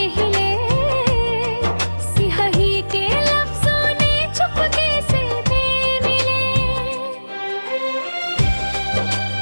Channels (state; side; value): inverted; both; correlation -1.00